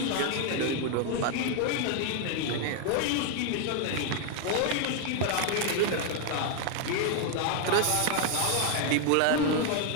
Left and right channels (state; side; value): different; both; correlation 0.00